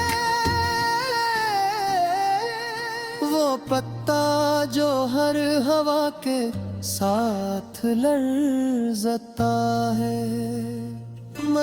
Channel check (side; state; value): both; identical; correlation 1.00